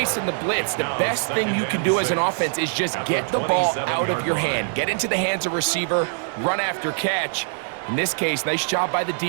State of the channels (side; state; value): left; silent; digital silence